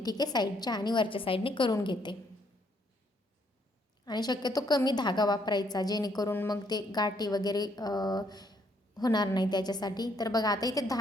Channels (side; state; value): both; normal; correlation 0.70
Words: आहे, साईडच्या आणि वरच्या साईडने करून घेते आणि शक्यतो कमी धागा वापरायचा, जेणेकरून मग ते गाठी वगैरे होणार नाही त्याच्यासाठी. तर बघा आता इथे